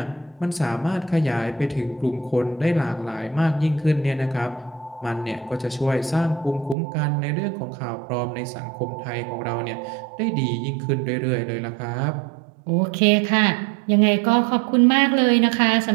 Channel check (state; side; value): drops out; left; at 6.8 s